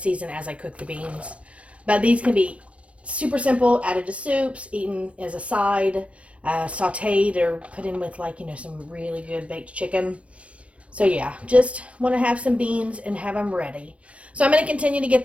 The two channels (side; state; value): left; late; 0.062 ms